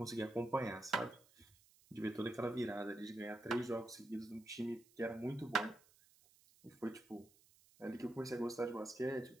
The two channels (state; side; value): noise; right; hiss, 27 dB below the sound